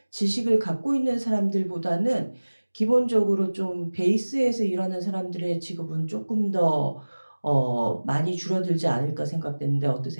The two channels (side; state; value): both; inverted; correlation -1.00